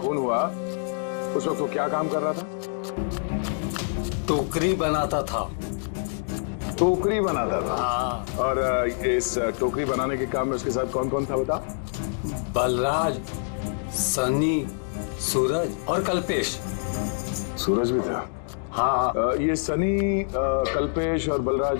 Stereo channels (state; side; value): silent; right; digital silence